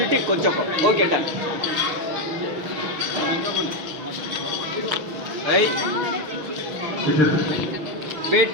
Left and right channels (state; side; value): late; left; 6.2 ms